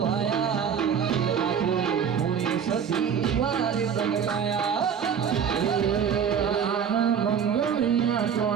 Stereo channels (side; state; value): left; quieter; 7.5 dB